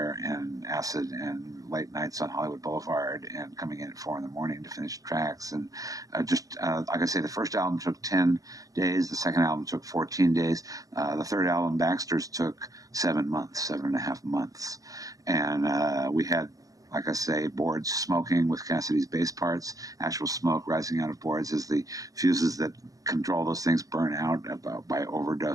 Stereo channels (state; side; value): late; left; 0.17 ms